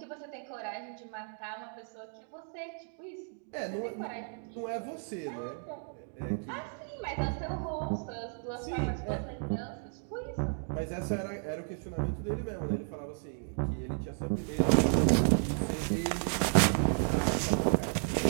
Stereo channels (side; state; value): left; silent; 56 dB below the other